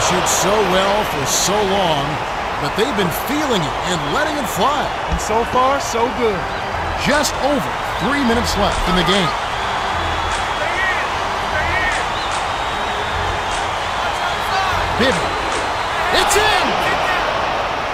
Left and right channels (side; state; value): both; identical; correlation 1.00